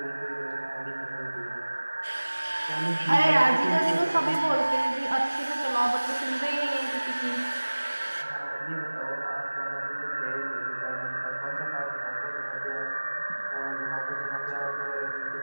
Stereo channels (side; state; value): both; inverted; correlation -1.00